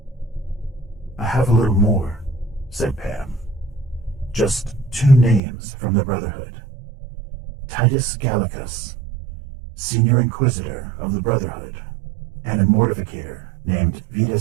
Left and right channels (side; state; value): left; drops out; at 5.4 s